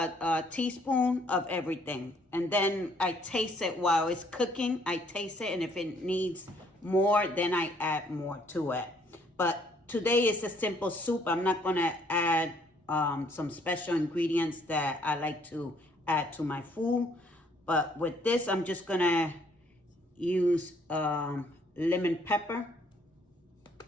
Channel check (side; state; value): both; normal; correlation 0.64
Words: teaspoon of everything. And then I taste it while it's cooking. I taste it, and if it needs more, then I add more to it. But today is a simple soup. I'm not gonna add some special ingredients that I like to add to my food. But with this, I'm just gonna use lemon pepper.